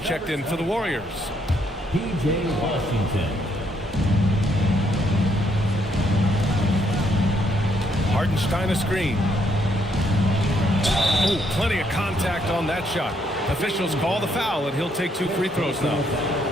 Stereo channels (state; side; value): normal; both; correlation 0.73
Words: in for the Warriors. P.J. Washington. Hartenstein a screen. Oh, plenty of contact on that shot. Officials call the foul, and he'll take 2 free throws now.